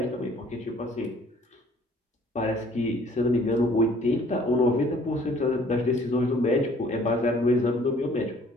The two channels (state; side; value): normal; both; correlation 0.56